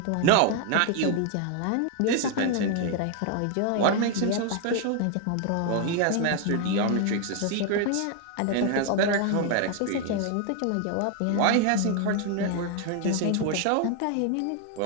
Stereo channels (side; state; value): both; different; correlation 0.00